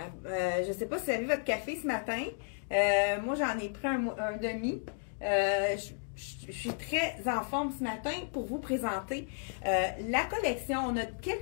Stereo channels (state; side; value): silent; right; digital silence